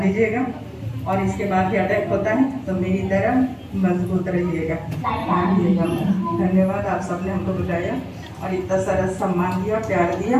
दीजिएगा। और इसके बाद भी अटैक होता है तो मेरी तरह मजबूत रहिएगा। धन्यवाद, आप सबने हमको बुलाया और इतना सारा सम्मान दिया, प्यार दिया।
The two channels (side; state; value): both; identical; correlation 1.00